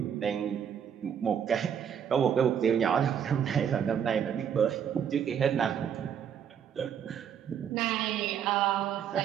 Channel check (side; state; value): left; quieter; 8.4 dB